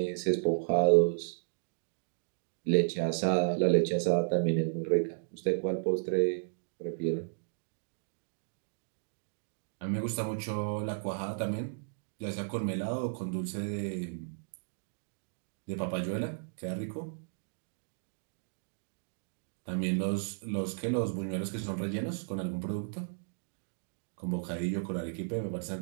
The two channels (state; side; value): silent; left; digital silence